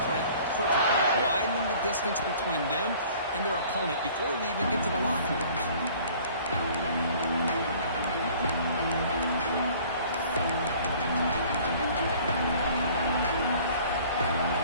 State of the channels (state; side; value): inverted; both; correlation -0.51